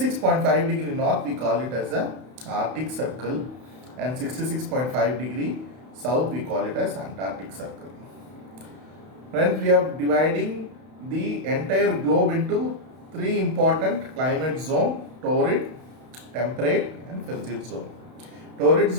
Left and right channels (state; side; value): late; left; 32 ms